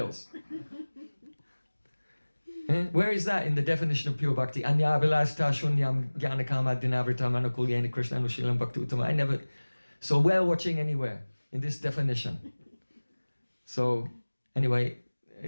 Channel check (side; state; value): both; inverted; correlation -1.00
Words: Where is that in the definition of pure bhakti? Anya vilasta shunyam jnanakama dinavritam anukulyena krishna anushilam bhakti uttama. I never saw whale watching anywhere in this definition. So anyway,